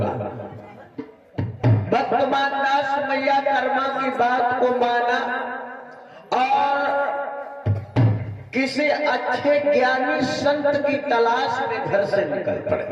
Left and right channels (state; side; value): identical; both; correlation 1.00